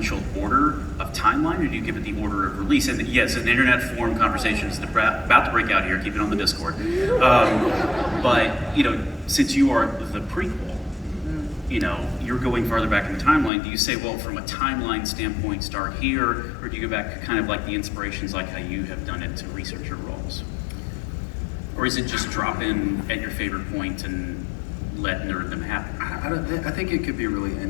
order of timeline, or do you give it the order of release? And yes, an internet forum conversation is about to break out here. Keep it on the Discord. But since you are the prequel, you're going farther back in the timeline. Do you say, well, from a timeline standpoint, start here, or do you go back to kind of like the inspirations, like how you have done it to research your roles? Or is it just drop in at your favorite point and let nerddom happen? I think it could be really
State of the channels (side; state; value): right; drops out; at 13.5 s